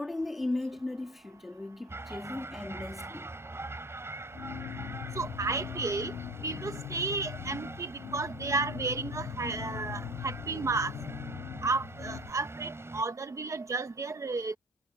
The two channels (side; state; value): both; normal; correlation 0.38